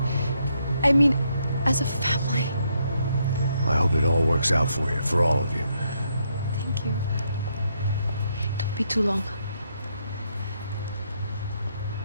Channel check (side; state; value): both; inverted; correlation -0.76